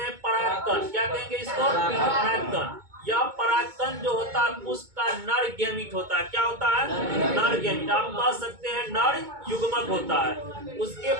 परागकण क्या कहेंगे इसको परागकण यह परागकण जो होता है पुष्प का नर गैमीट होता है। क्या होता है? नर गैमीट। आप कह सकते हैं नर युग्मक होता है। उसके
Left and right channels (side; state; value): left; late; 2.2 ms